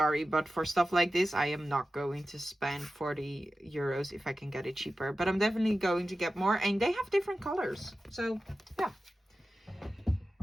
but for stuff like this, I am not going to spend 40 euros if I can get it cheaper. But I'm definitely going to get more, and they have different colors. So yeah.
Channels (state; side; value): normal; both; correlation 0.94